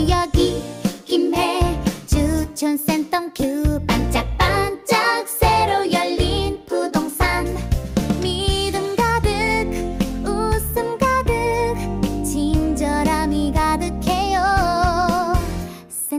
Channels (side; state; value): both; identical; correlation 1.00